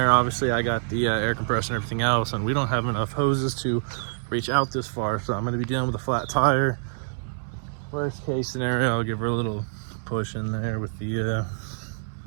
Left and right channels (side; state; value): left; silent; digital silence